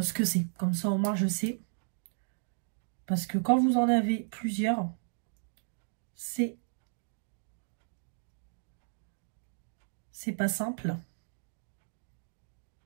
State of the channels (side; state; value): left; silent; digital silence